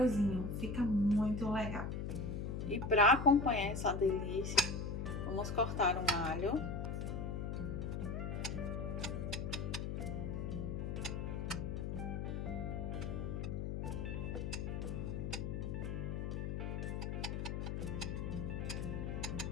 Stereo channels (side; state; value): left; noise; hum, 2 dB below the sound